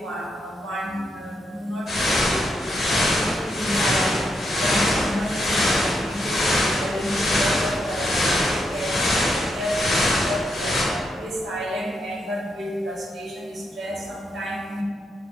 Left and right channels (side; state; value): both; normal; correlation 0.81